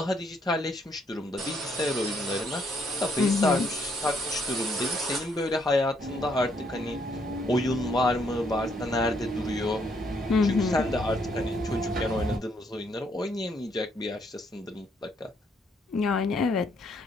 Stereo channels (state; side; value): normal; both; correlation 0.71